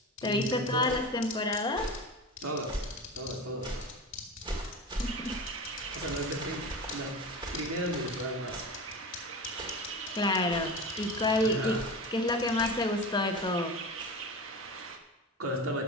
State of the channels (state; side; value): normal; both; correlation 0.29